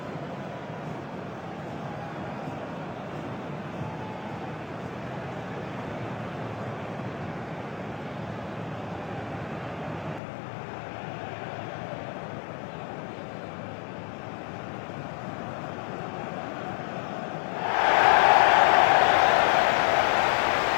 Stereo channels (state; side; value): drops out; right; at 10.2 s